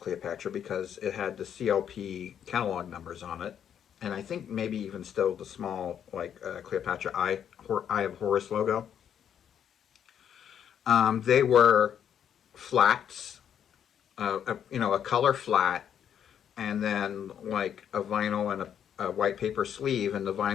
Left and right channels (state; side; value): quieter; right; 9.0 dB